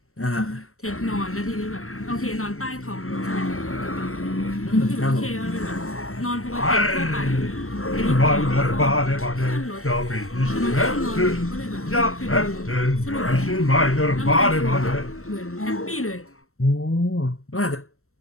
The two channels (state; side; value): late; right; 0.63 ms